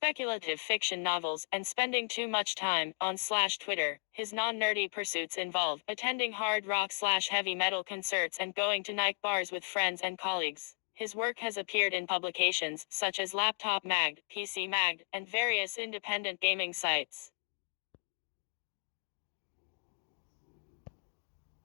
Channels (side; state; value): right; silent; digital silence